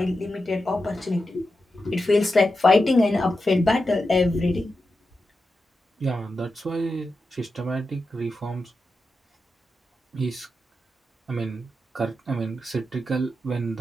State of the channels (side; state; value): both; normal; correlation 0.89